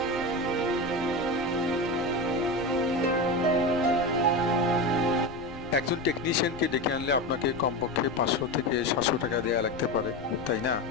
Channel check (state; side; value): noise; left; rumble, 18 dB below the sound